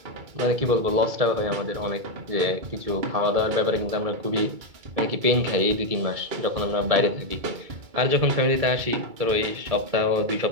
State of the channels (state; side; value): late; left; 2.3 ms